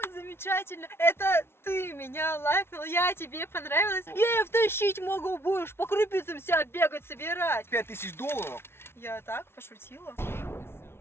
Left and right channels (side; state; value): right; late; 0.12 ms